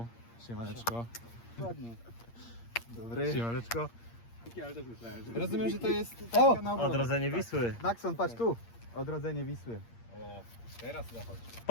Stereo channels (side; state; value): right; late; 8.6 ms